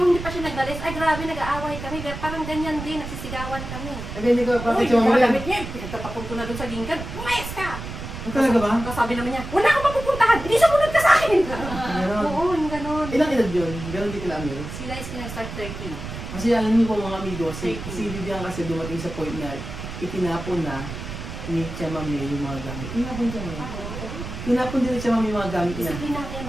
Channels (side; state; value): right; noise; rumble, 9 dB below the sound